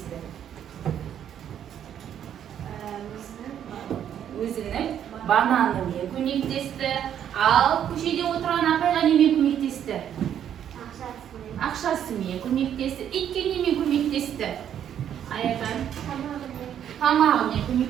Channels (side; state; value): left; quieter; 9.7 dB